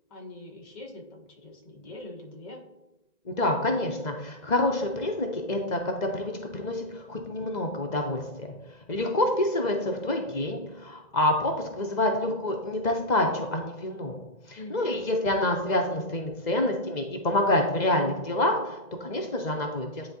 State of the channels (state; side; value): late; right; 2.0 ms